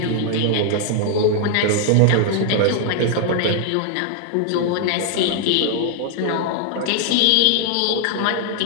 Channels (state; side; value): different; both; correlation 0.00